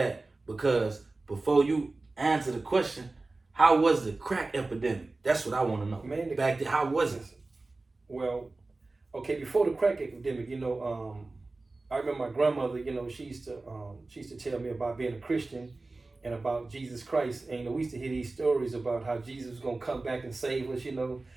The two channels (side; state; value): left; quieter; 3.3 dB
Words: because before you answer the question, how was the crack epidemic? That's what I want to know. Man, back then, how was it? Well, okay, before the crack epidemic, I remember my grandmother, she used to tell me about being a Christian and about Jesus Christ. And we used to hear these stories about how Jesus was gonna come back and save us,